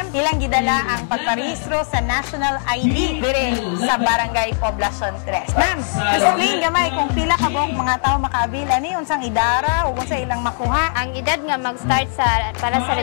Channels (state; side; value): silent; right; digital silence